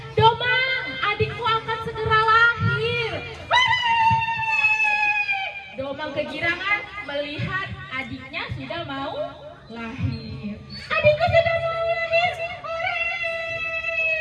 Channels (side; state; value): both; identical; correlation 1.00